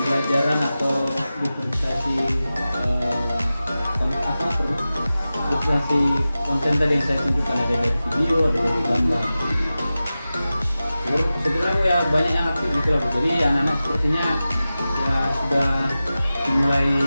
atau diferensiasi diferensiasi konten tadi yang saya tunjukkan, ada dari video, ada dari gambar. Sebenarnya ya banyak yang aktif gitu loh. Jadi anak-anak sepertinya ya sudah mulai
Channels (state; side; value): inverted; both; correlation -0.95